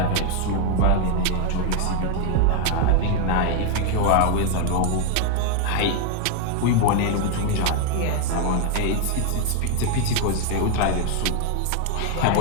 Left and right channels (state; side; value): different; both; correlation 0.01